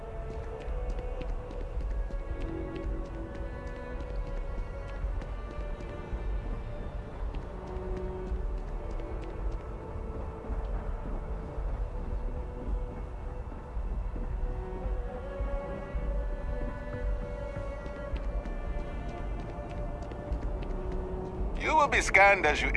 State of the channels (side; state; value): both; identical; correlation 1.00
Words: You will be scanned as you